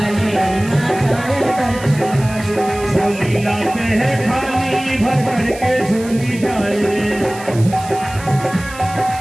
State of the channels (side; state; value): right; noise; hiss, 16 dB below the sound